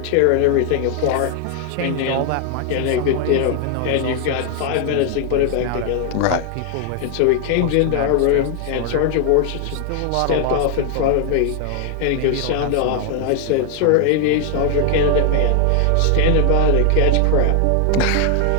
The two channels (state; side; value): different; both; correlation 0.00